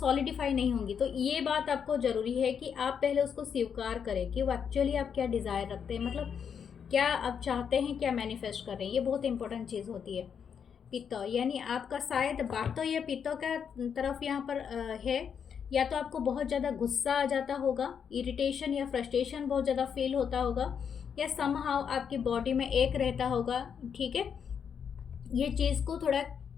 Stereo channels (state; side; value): quieter; right; 7.3 dB